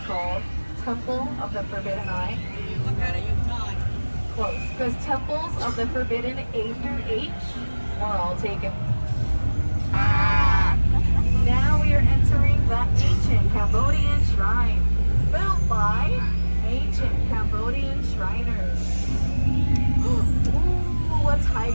called Temple of the Forbidden Eye? Close, because Temples of the Forbidden A through H were all taken. Now we are entering the ancient Cambodian shrine, built by ancient Cambodian Shriners. Ooh, a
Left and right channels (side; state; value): both; inverted; correlation -1.00